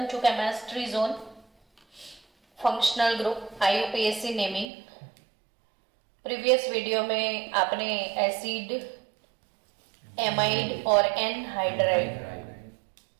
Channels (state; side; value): drops out; left; at 4.7 s